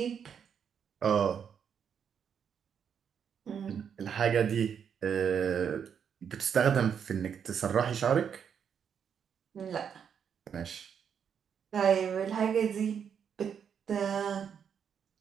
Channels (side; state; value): left; quieter; 7.6 dB